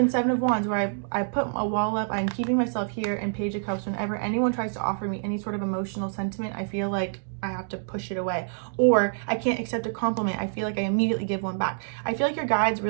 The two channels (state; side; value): silent; left; digital silence